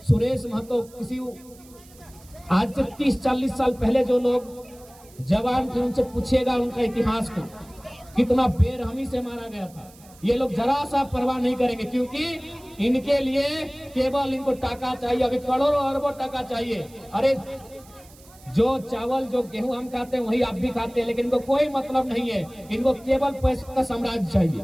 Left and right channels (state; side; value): noise; right; hiss, 24 dB below the sound